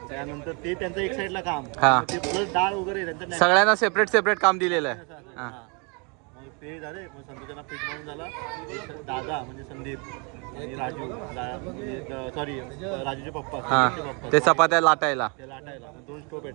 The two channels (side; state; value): left; quieter; 33.2 dB